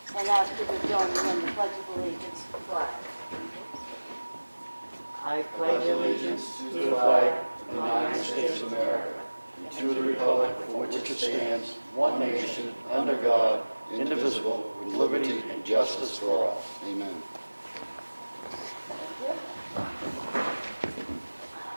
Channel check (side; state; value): both; inverted; correlation -1.00